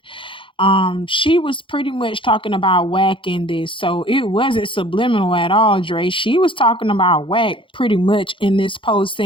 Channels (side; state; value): right; late; 0.25 ms